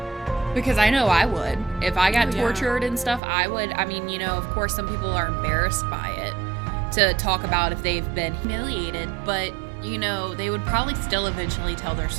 Because I know I would. If I got tortured and stuff, I would. I mean, you know, of course, some people are embarrassed by it to talk about if they've been humiliated, but, you know, they would probably still eventually tell their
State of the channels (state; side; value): drops out; left; at 3.2 s